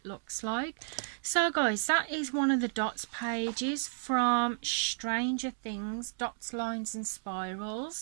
looks like. So guys, that is one of the dots pages from Stranger Things, Dots, Lines and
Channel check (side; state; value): left; silent; digital silence